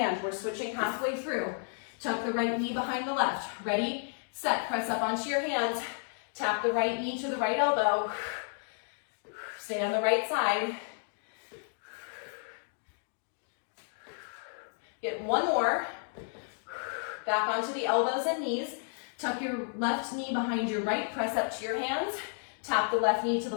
We're switching halfway through. Tuck the right knee behind the left. Ready, set, press up onto your hands. Tap the right knee to the right elbow. Stay on the right side. Get 1 more. Back onto the elbows and knees. Tuck your left knee behind your right. Press up to your hands. Tap the left knee to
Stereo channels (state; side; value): silent; right; 56 dB below the other